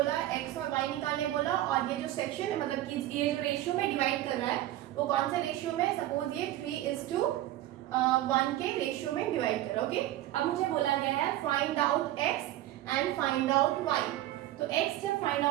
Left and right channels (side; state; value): left; quieter; 14.6 dB